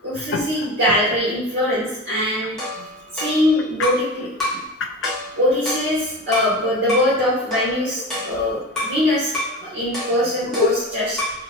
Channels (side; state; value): both; normal; correlation 0.28